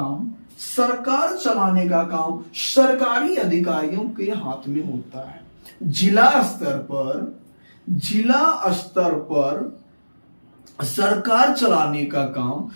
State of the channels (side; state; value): both; inverted; correlation -1.00